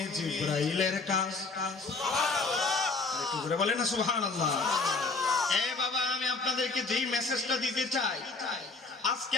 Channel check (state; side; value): quieter; right; 4.0 dB